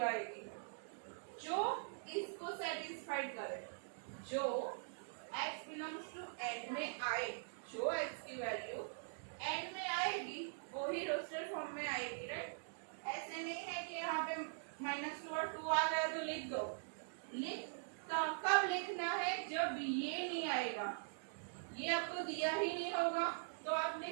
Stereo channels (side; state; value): left; silent; digital silence